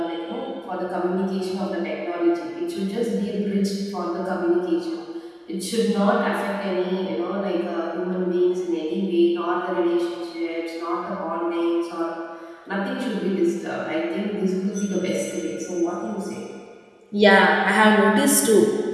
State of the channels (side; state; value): both; identical; correlation 1.00